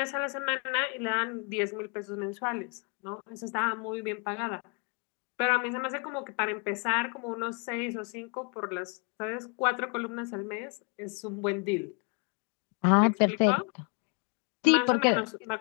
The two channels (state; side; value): quieter; right; 37.7 dB